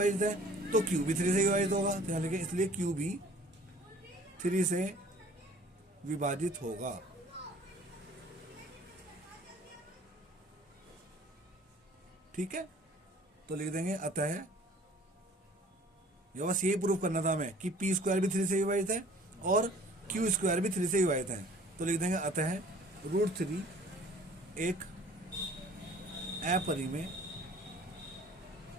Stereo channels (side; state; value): both; normal; correlation 0.51